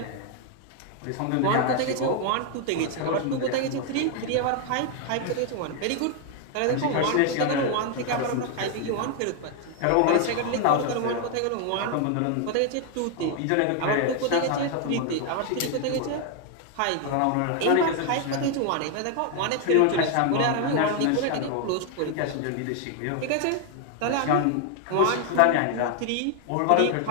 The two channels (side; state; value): both; different; correlation 0.00